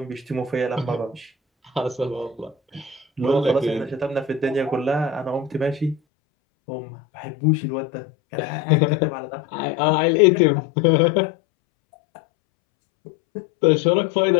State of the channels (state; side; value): drops out; right; at 6.0 s